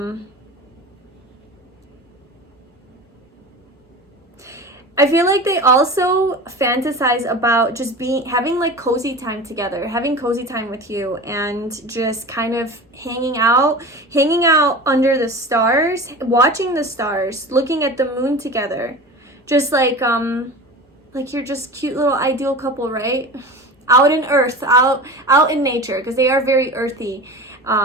I feel like they also fantasize about just having like cozy time together, having cozy time with you, and just kind of hanging out under the stars, watching the stars, looking at the moon together. Just like you're just cute little ideal couple, right? Out in earth, out in nature, because they are very earthy.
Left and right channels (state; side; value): normal; both; correlation 0.33